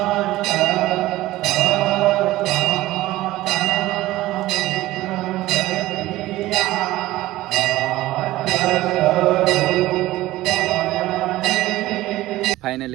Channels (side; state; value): left; quieter; 16.8 dB